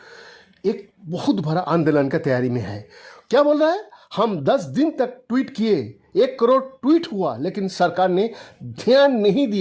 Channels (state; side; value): identical; both; correlation 1.00